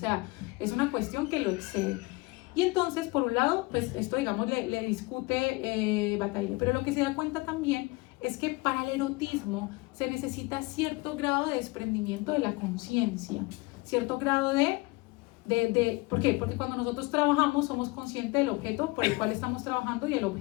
es una cuestión que lo excede. Y entonces, por un lado, pues esto, digamos, le discute Bataille. Pero lo que se da cuenta también es que para el erotismo se necesita cierto grado de desprendimiento de la conciencia, cierto grado ¿por qué? Porque cuando nosotros trabajamos somos conscientes del objeto por el cual estamos trabajando y el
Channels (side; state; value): right; quieter; 24.1 dB